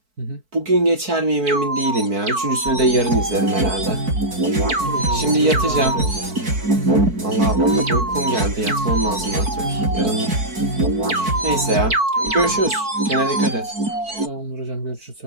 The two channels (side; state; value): left; late; 4.5 ms